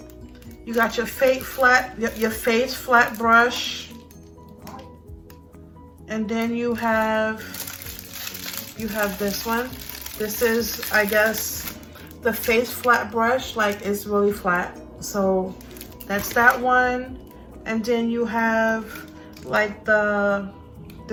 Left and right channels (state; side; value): identical; both; correlation 1.00